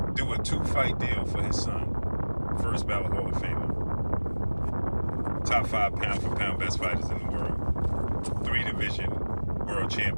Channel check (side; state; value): both; inverted; correlation -1.00